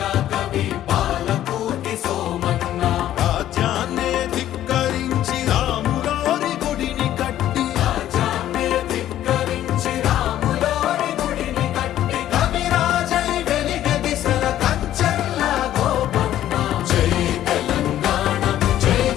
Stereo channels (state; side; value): quieter; right; 12.4 dB